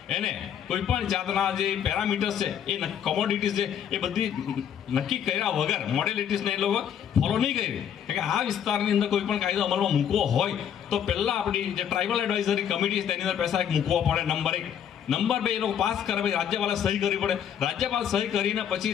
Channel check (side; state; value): right; quieter; 9.0 dB